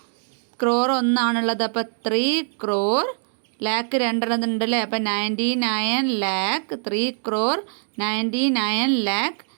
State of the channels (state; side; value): silent; left; digital silence